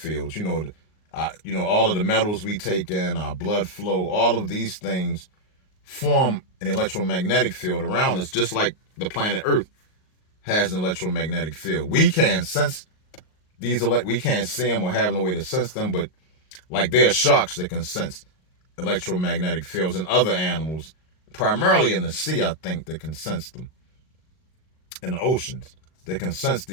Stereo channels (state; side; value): late; right; 38 ms